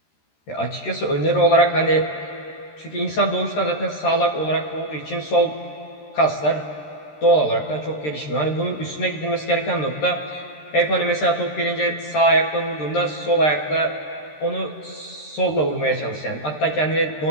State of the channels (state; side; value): late; right; 13 ms